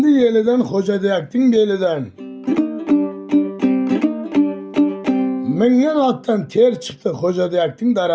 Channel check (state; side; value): identical; both; correlation 1.00